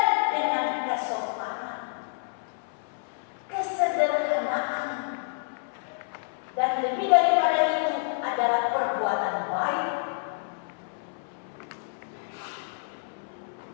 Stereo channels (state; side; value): silent; right; 59 dB below the other